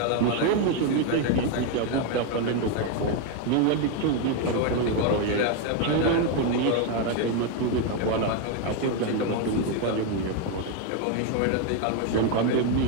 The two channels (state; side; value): different; both; correlation 0.01